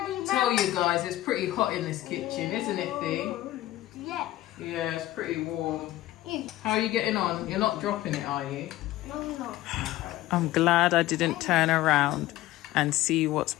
Tell you guys, it's pretty hot in this kitchen, isn't it, Thee? Yeah. Yeah, it's pretty warm. How are you getting on? You're not dropping it, are you? No. I'm glad I didn't turn around and see what's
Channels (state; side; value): quieter; right; 15.6 dB